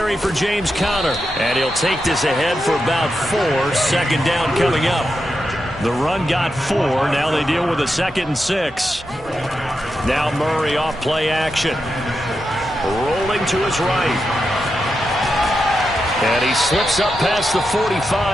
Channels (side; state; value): both; normal; correlation 0.87